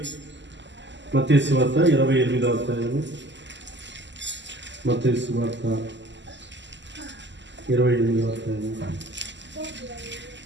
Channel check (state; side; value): late; left; 0.53 ms